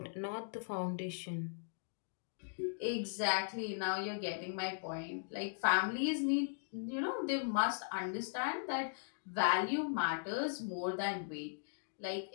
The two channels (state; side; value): silent; right; digital silence